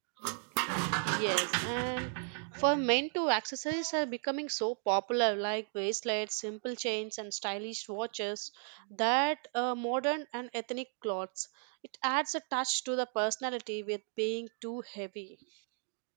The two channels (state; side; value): silent; left; 54 dB below the other